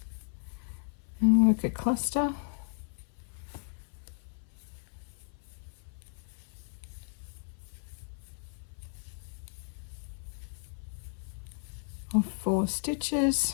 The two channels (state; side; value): silent; right; 55 dB below the other